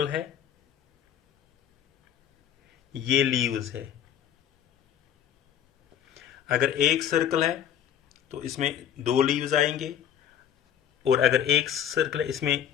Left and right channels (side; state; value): right; quieter; 9.7 dB